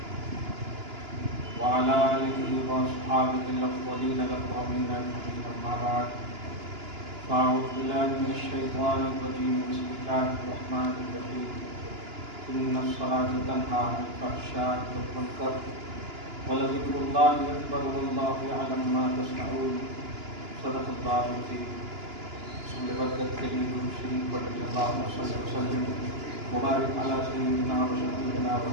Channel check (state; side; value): late; left; 2.9 ms